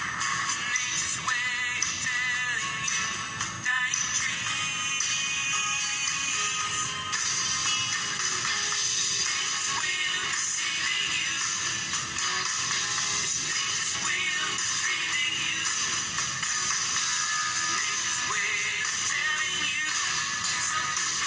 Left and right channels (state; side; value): identical; both; correlation 1.00